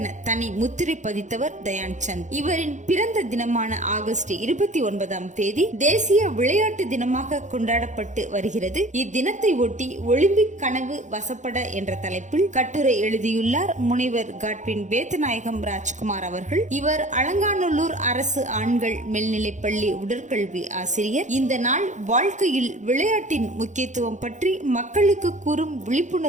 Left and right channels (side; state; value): left; late; 0.35 ms